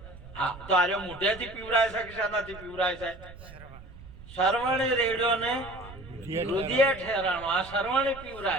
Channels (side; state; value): right; noise; rumble, 17 dB below the sound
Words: હા, તો આરે મોઢેથી પીવડાય છે કે શાનાથી પીવડાય છે? સરવણી રેડ્યો ને રુધિયા ઠેરાણો. આ સરવણી